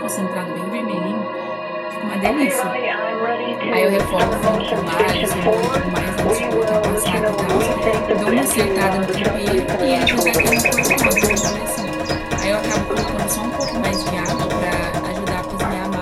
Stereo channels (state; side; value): identical; both; correlation 1.00